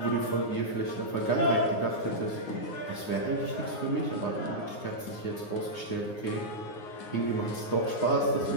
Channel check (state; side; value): late; right; 9.7 ms